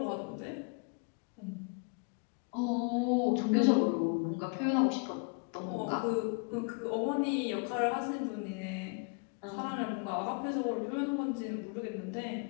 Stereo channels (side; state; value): right; quieter; 35.7 dB